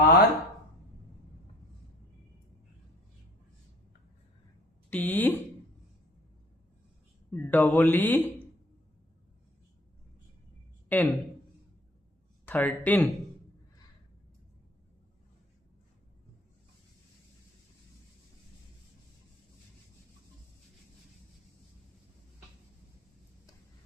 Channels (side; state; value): both; normal; correlation 0.52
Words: R T double E N, 13।